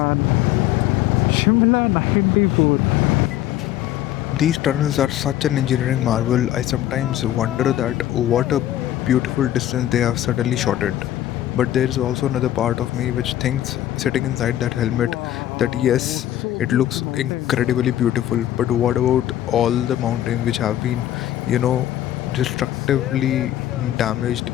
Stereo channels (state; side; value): quieter; right; 12.9 dB